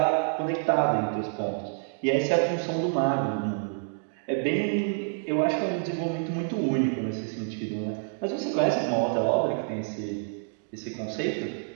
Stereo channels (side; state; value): left; silent; digital silence